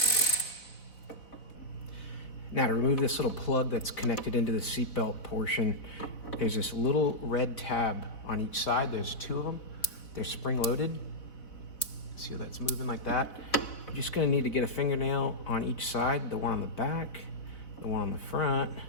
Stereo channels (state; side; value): late; right; 4.0 ms